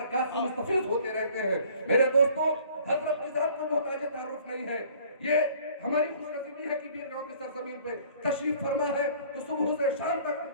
سے مستفیض ہوتے رہتے ہیں. میرے دوستو، حضرت کی ذات کو محتاج تعارف نہیں ہے. یہ ہماری خوش نصیبی ہے کہ بیرگاؤں کی سرزمین پہ تشریف فرما ہے تو صبح سے شام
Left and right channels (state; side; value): inverted; both; correlation -0.54